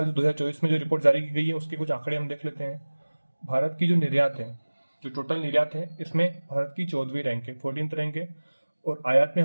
2024 में जो रिपोर्ट जारी की गई है उसके कुछ आंकड़े हम देख लेते हैं। भारत की जो निर्यात है, जो टोटल निर्यात है, इसमें भारत की 14वीं रैंक है, 14th रैंक है, और आयात में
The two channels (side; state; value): both; inverted; correlation -1.00